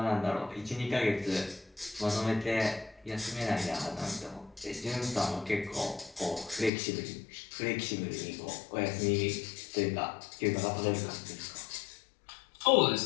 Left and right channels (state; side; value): drops out; right; at 6.7 s